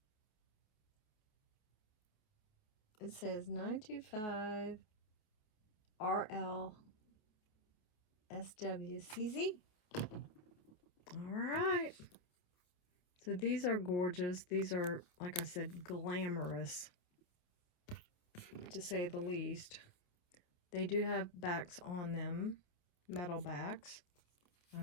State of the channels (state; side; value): late; right; 28 ms